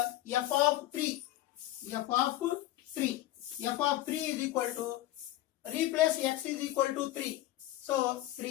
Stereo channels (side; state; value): right; quieter; 15.1 dB